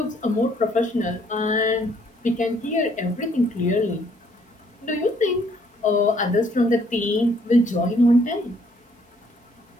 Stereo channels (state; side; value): normal; both; correlation 0.65